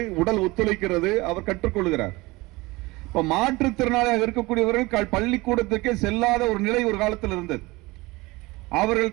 உடல் ஒத்துழைக்கிறது, அவர் கற்றுக்கொள்கிறார். இப்ப மாற்றுத்திறனாளியாக இருக்கக்கூடியவர்கள் பள்ளிக்கூடத்துக்கே செல்லாத ஒரு நிலை ஒரு காலத்தில் இருந்தது.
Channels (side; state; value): left; quieter; 22.2 dB